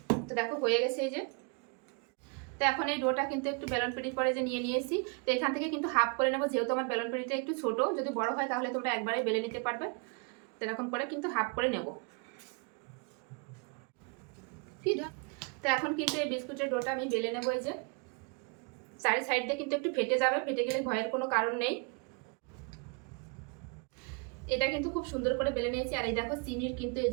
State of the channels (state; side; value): quieter; left; 32.6 dB